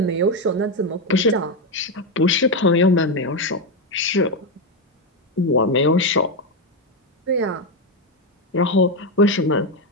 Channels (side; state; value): both; normal; correlation 0.08